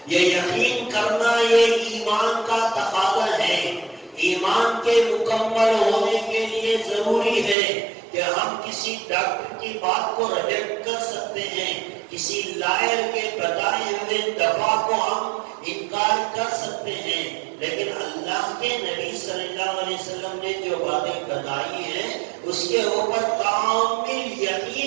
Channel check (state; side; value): drops out; left; at 7.6 s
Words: یہ یقین کرنا یہ ایمان کا تقاضا ہے۔ ایمان کے مکمل ہونے کے لیے ضروری ہے کہ ہم کسی ڈاکٹر کی بات کو ریجیکٹ کر سکتے ہیں، کسی لائر کے بتائے ہوئے دوا کو ہم انکار کر سکتے ہیں، لیکن اللہ کے نبی صلی اللہ علیہ وسلم نے جو باتیں بتائی ہیں اس کے اوپر کامل